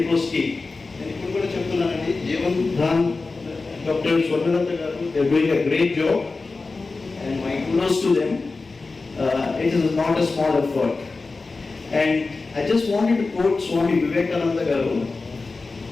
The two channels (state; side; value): quieter; right; 3.8 dB